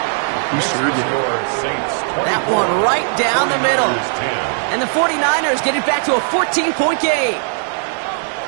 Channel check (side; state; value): left; silent; 67 dB below the other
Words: He sure did. That one right down the middle. And the 49ers get it back to a 14-point game.